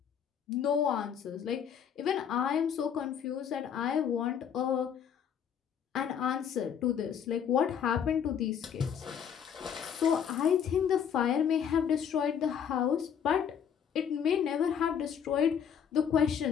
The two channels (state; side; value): quieter; right; 8.1 dB